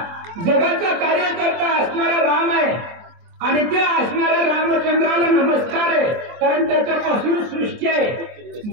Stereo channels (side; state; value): left; late; 23 ms